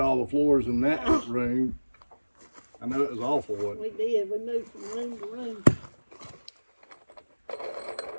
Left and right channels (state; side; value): inverted; both; correlation -1.00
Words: the floors in that room. I know it was awful, wasn't it? We did. We moved from room to room.